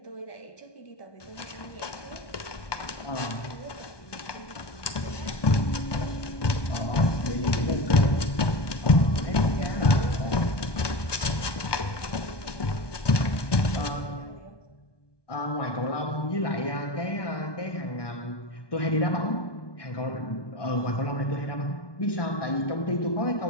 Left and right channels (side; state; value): right; late; 1.2 ms